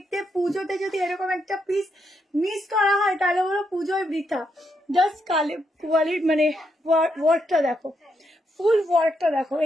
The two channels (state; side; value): normal; both; correlation 0.80